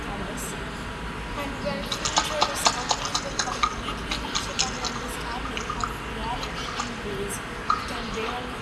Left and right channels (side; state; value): both; identical; correlation 1.00